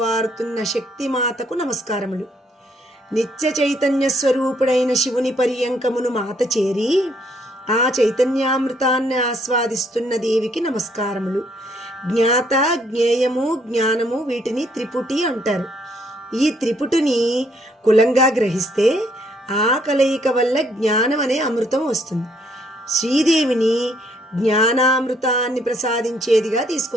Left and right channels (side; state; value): both; normal; correlation 0.68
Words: శక్తిమాతకు నమస్కారములు. నిత్య చైతన్య స్వరూపుడైన శివుని పర్యంకమును మాత చేరి ఆ చైతన్యామృతాన్ని ఆస్వాదిస్తున్న దేవికి నమస్కారములు. జ్ఞాత, జ్ఞేయము, జ్ఞానము వీటిని త్రిపుటి అంటారు. ఈ త్రిపుటిని కులంగా గ్రహిస్తే ఆ కలయిక వల్ల జ్ఞానం అనే అమృతం వస్తుంది. శ్రీదేవిని జ్ఞానామృతాన్ని ప్రసాదించేదిగా